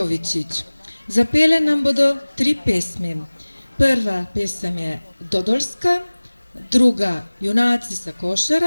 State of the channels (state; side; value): inverted; both; correlation -1.00